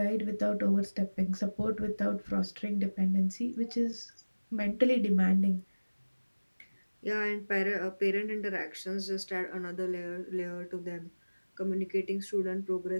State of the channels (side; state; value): both; inverted; correlation -1.00